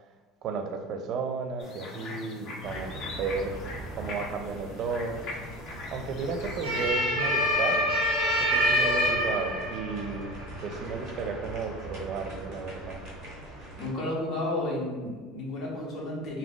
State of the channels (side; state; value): both; normal; correlation 0.33